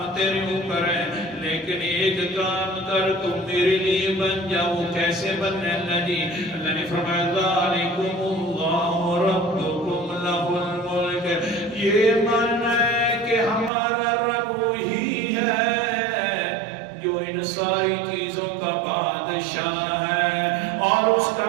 تیرے اوپر ہیں لیکن ایک کام کر تم میرے لیے بن جاؤ کیسے بننے اللہ جی اللہ نے فرمایا ذالکم اللہ ربکم لہ الملک یہ معنی ہے کہ ہمارا رب وہی ہے جو ان ساری چیزوں کا بادشاہ ہے اور اس کا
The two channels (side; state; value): left; drops out; at 13.7 s